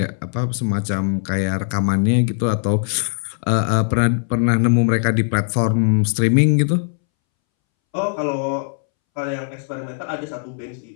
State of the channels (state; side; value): silent; right; 65 dB below the other